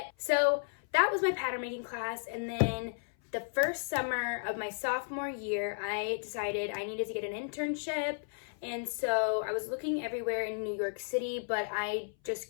so that was my pattern making class. And then the first summer of my sophomore year, I decided I needed to get an internship. And so I was looking everywhere in New York City, but I just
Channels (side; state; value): right; silent; 55 dB below the other